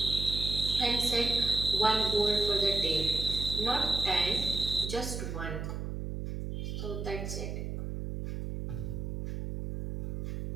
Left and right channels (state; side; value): noise; right; hum, 4 dB below the sound